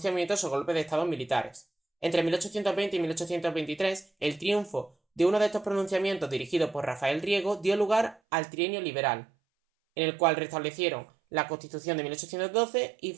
o golpes de estado militares. Entre 1820 y 1823, el triunfo de uno de estos pronunciamientos dirigido por Rafael Riego dio lugar al Trienio Liberal, en el cual restablecieron la Constitución de 1812 y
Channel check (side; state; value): left; drops out; at 8.2 s